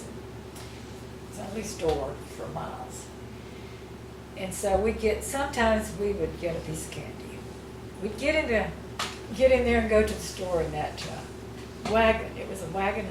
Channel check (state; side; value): identical; both; correlation 1.00